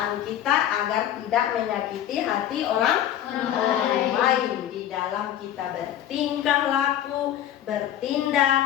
kita agar tidak menyakiti hati orang lain di dalam kita bertingkah laku,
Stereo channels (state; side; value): quieter; right; 11.3 dB